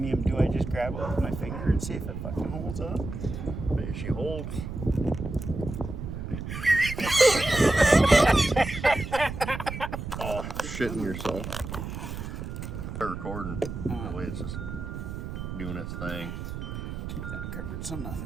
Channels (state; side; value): noise; right; rumble, 7 dB below the sound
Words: do I just grab it with my finger and see if it fucking holds up? There she holds. Oh, shitting yourself. Start recording. That way it's just doing its thing. Keep that covered so